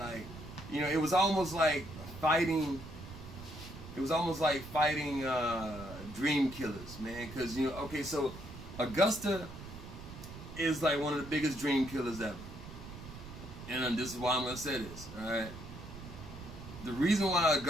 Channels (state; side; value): noise; right; rumble, 13 dB below the sound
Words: you know, it was almost like fighting. It was almost like fighting dream killers, man. Because, you know, okay, so Augusta is like one of the biggest dream killers ever. And this is why I'm going to say this, all right? The reason why